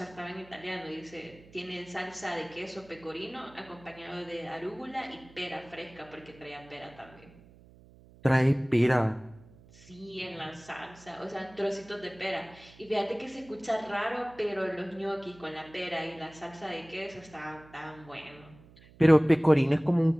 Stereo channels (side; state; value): right; noise; hum, 23 dB below the sound